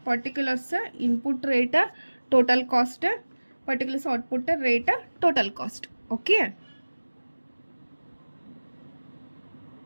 particulars input rate, total cost, particulars output rate, total cost. Okay,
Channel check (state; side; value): inverted; both; correlation -1.00